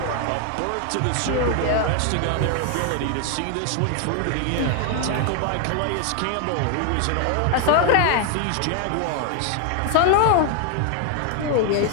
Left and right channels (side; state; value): both; different; correlation 0.00